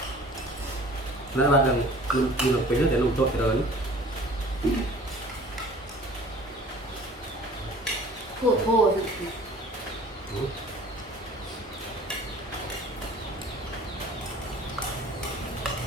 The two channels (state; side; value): normal; both; correlation 0.48